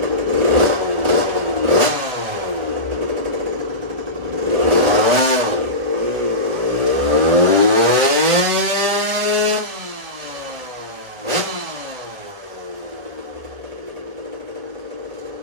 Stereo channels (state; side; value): late; left; 1.2 ms